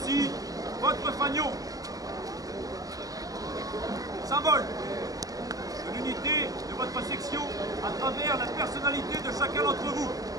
aussi votre fanion. Symbole de l'unité de votre section à travers la personnalité de chacun d'entre vous.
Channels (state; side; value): late; left; 0.17 ms